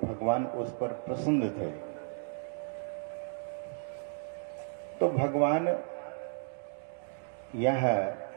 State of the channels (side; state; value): left; silent; digital silence